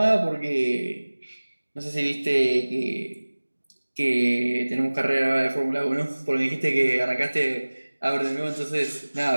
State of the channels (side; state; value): both; inverted; correlation -1.00